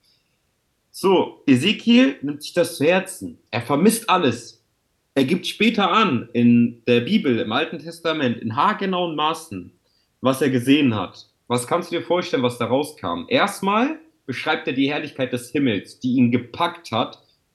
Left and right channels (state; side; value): identical; both; correlation 1.00